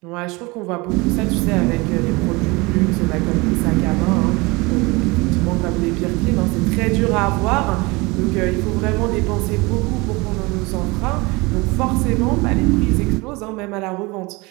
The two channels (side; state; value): left; quieter; 24.7 dB